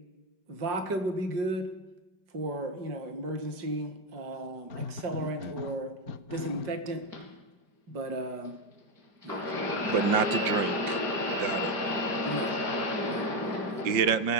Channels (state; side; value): late; left; 5.1 ms